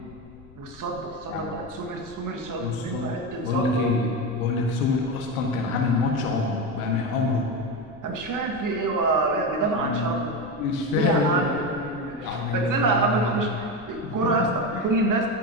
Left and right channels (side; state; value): left; noise; rumble, 22 dB below the sound